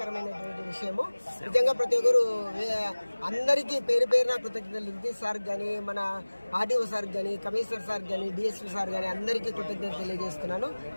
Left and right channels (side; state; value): both; inverted; correlation -1.00